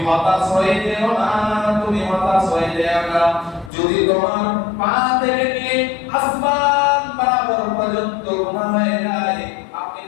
হতাশ হয়ে যেও না, তুমি হতাশ হয়ে যেও না। যদি তোমার পা থেকে নিয়ে আসমান বরাবর পর্যন্ত গুনাহ হয়ে যায়, আপনি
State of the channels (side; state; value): right; drops out; at 3.7 s